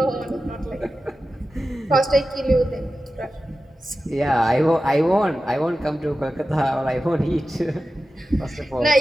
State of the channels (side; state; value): both; normal; correlation 0.93